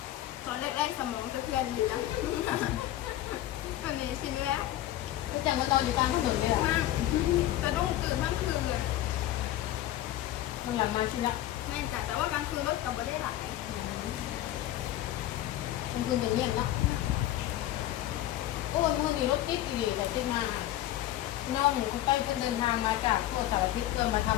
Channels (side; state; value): right; quieter; 13.9 dB